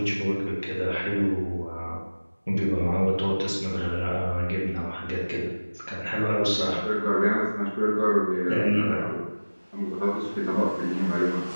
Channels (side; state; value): both; inverted; correlation -1.00